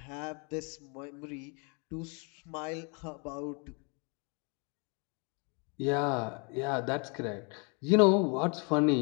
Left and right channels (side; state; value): right; quieter; 35.0 dB